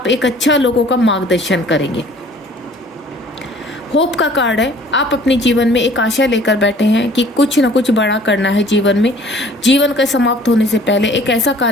एक अच्छा लोगों का मार्गदर्शन करेंगे। होप का कार्ड है। आप अपने जीवन में एक आशा लेकर बैठे हैं कि कुछ ना कुछ बड़ा करना है जीवन में। जीवन का समाप्त होने से पहले एक ऐसा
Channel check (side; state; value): both; normal; correlation 0.53